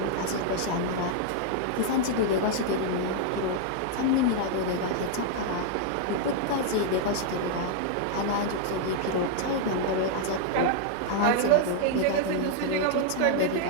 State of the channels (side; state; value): both; different; correlation 0.00